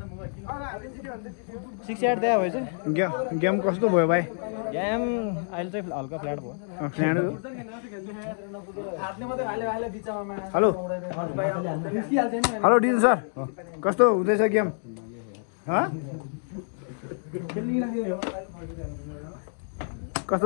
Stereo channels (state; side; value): silent; right; digital silence